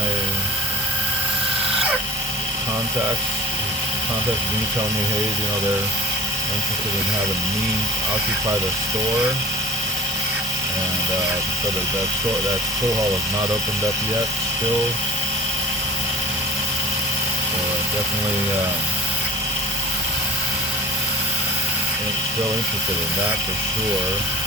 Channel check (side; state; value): both; normal; correlation 0.40